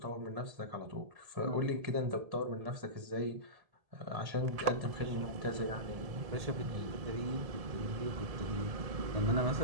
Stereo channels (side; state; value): left; late; 1.7 ms